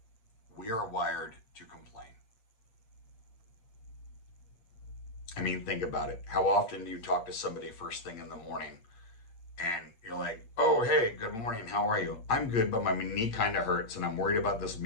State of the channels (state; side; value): late; right; 8.7 ms